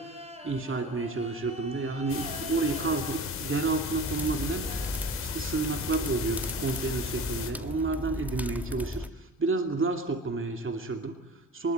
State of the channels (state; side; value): normal; both; correlation 0.37